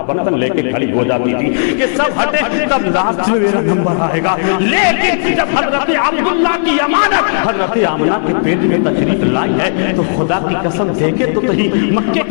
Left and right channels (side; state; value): right; silent; digital silence